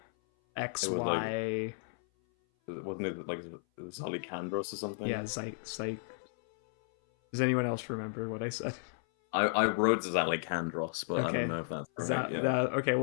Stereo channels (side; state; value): right; silent; 55 dB below the other